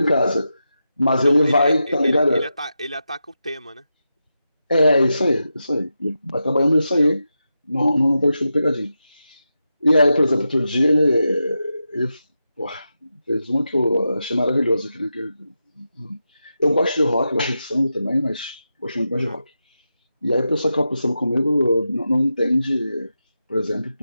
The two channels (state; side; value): inverted; both; correlation -0.89